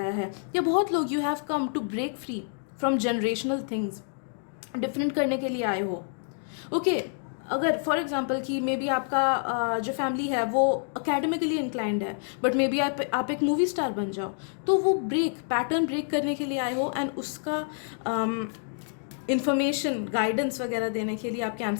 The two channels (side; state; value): right; silent; digital silence